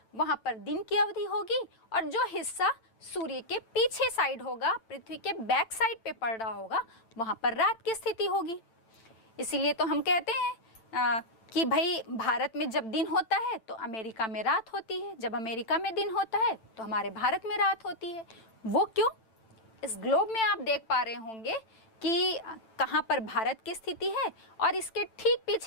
वहाँ पर दिन की अवधि होगी, और जो हिस्सा सूर्य के पीछे साइड होगा, पृथ्वी के बैक साइड पे पड़ रहा होगा, वहाँ पर रात की स्थिति होगी। इसीलिए तो हम कहते हैं कि भाई भारत में जब दिन होता है तो अमेरिका में रात होती है, जब अमेरिका में दिन होता है तो हमारे भारत में रात होती है। वो क्यों? इस ग्लोब में आप देख पा रहे होंगे कि कहाँ पर भारत की स्थिति है, और इसके ठीक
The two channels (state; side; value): late; right; 9.0 ms